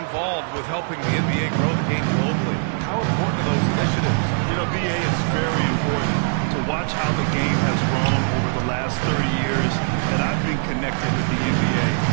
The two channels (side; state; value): left; silent; 63 dB below the other